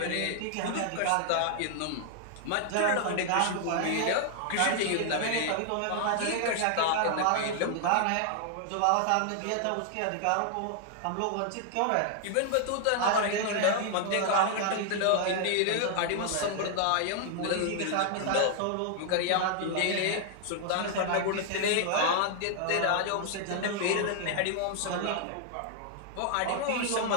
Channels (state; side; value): different; both; correlation 0.00